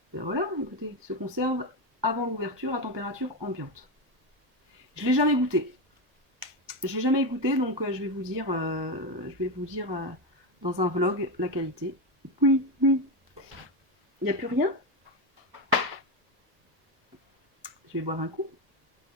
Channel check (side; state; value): left; late; 1.2 ms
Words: Ben voilà, écoutez, se conserve avant l'ouverture à température ambiante. Je ne l'ai jamais goûté. Je l'ai jamais goûté, donc je vais vous dire, dans un vlog la qualité. Oui, oui. Il n'y a plus rien. Je vais boire un coup.